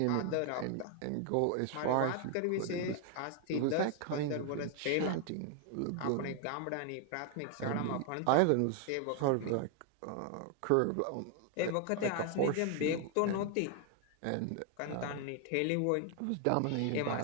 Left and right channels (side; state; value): both; different; correlation 0.00